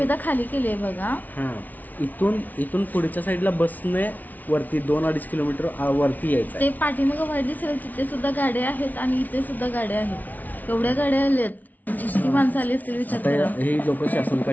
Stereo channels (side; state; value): right; late; 0.079 ms